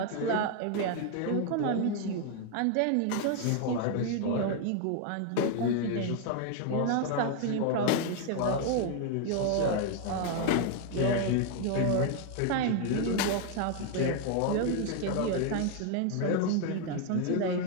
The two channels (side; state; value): both; different; correlation 0.00